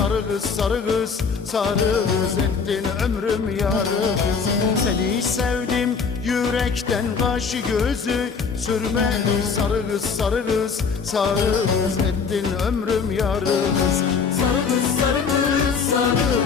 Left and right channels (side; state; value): right; quieter; 5.6 dB